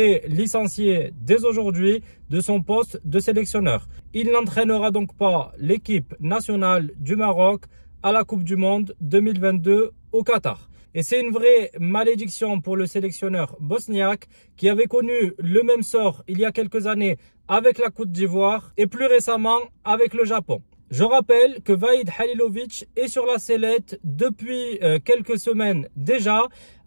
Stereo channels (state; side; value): inverted; both; correlation -1.00